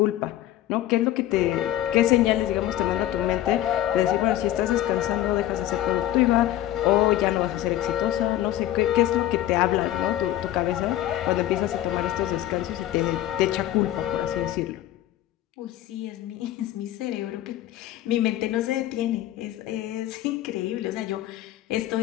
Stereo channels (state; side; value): quieter; right; 13.6 dB